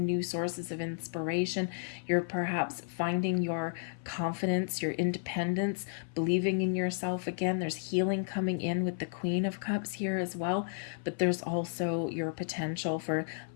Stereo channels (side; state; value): right; silent; 56 dB below the other